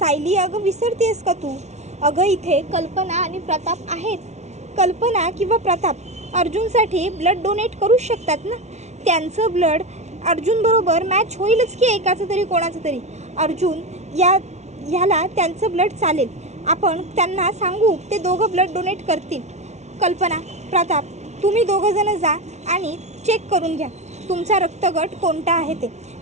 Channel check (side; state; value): left; late; 0.32 ms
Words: अगं विसरतेस का तू? अगं इथे कल्पना आणि प्रताप आहेत. कल्पना किंवा प्रताप अर्जुनसाठी ब्लड डोनेट करूच शकतात ना. त्यांचं ब्लड अर्जुनबरोबर मॅच होईलच की एकाचं तरी कोणाचं तरी. अर्जुन ह्याला त्यांचं ब्लड चालेल. आपण त्यांना सांगू, ते दोघं ब्लड डोनेट करतील. कल्पना, प्रताप, तुम्ही दोघंजणं जा आणि चेक करून घ्या तुमचा रक्तगट कोणता आहे ते.